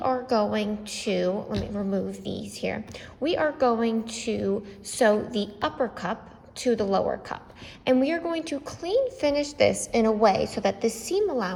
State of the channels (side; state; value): both; identical; correlation 1.00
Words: going to, let me remove these here. We are going to sew the upper cup to the lower cup. And we are going to clean finish this in a way so that the seam